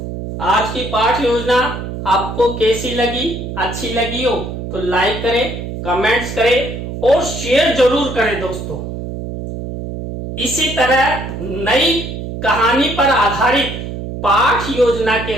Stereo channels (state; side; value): noise; right; hum, 7 dB below the sound